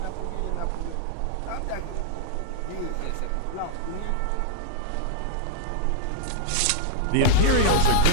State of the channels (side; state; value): both; different; correlation -0.01